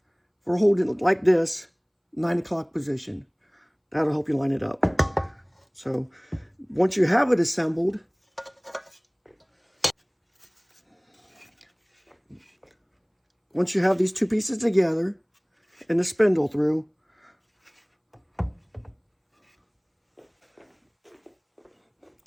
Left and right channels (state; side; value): identical; both; correlation 1.00